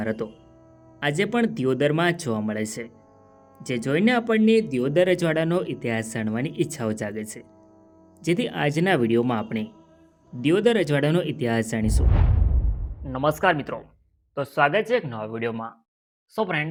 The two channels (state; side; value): identical; both; correlation 1.00